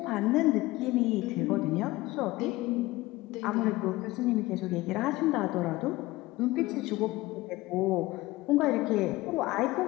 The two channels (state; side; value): quieter; right; 19.3 dB